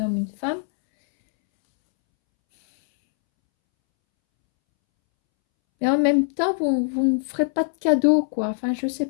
une femme. Mais en même temps, vous ne ferez pas de cadeau, quoi. Enfin, je ne sais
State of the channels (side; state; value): right; silent; 64 dB below the other